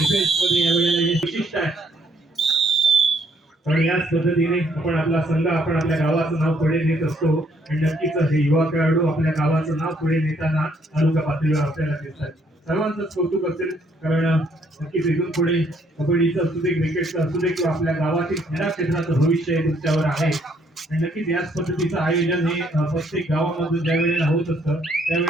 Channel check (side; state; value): both; normal; correlation 0.68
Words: या वेळेला हे विशिष्ट आहे. आणि याच पद्धतीने आपण आपला संघ, आपण आपल्या गावाचं नाव पुढे नेत असतो. आणि नक्कीच हे युवा खेळाडू आपल्या गावाचं नाव पुढे नेताना तालुका पातळीवर आपल्याला दिसतात. सर्वांचंच कौतुक असेल, कारण नक्कीच इथून पुढे कबड्डीचं असू दे, क्रिकेटचं असू दे, किंवा आपल्या गावातील क्रीडा क्षेत्राचं भविष्य हे तुमच्यावर आहे. आणि नक्कीच याच पद्धतीचं आयोजन हे प्रत्येक गावामध्ये ज्या वेळेला होत असतं